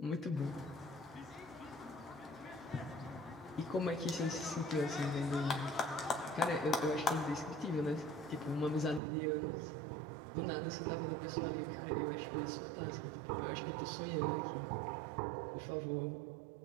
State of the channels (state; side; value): drops out; left; at 9.0 s